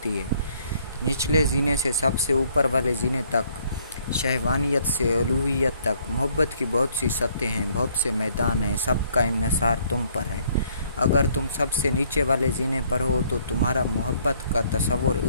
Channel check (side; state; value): both; inverted; correlation -0.65